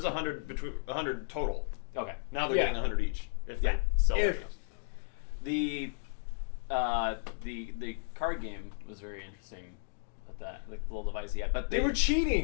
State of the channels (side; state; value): right; silent; digital silence